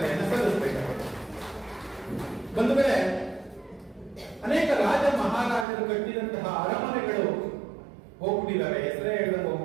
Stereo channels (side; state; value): left; drops out; at 5.7 s